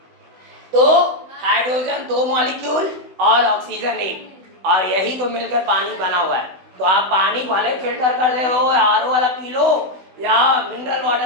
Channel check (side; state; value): left; late; 16 ms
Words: तो हाइड्रोजन 2 मॉलिक्यूल और ऑक्सीजन एक, और यही तो मिलकर पानी बना हुआ है। तो आप पानी भले फिल्टर कर दे हो, आरओ वाला पी लो या मिनरल